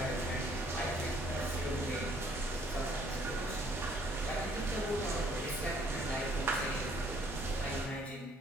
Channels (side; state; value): both; normal; correlation 0.62